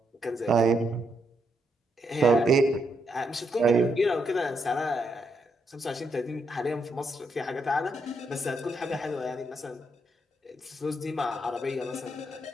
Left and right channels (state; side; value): normal; both; correlation 0.78